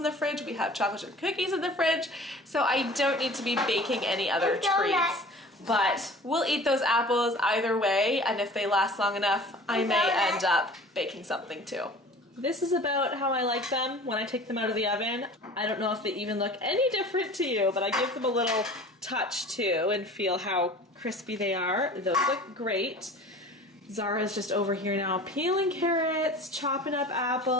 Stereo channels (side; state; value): both; normal; correlation 0.43